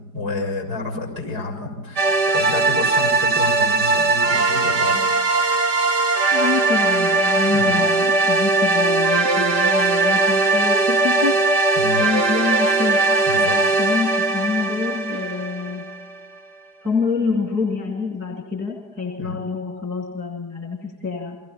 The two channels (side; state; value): left; late; 5.0 ms